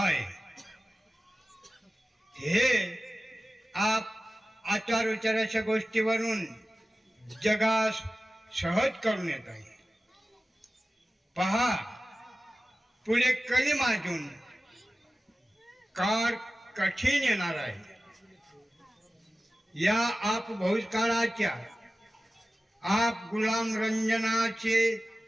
हे आप आचार विचाराच्या गोष्टीवरून जगास सहज करून येत आहे. पहा, पुढे कली माजून काळ कठीण येणार आहे. या आप भूतकाळाच्या आप गुलाम रंजनाचे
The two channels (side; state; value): both; normal; correlation 0.96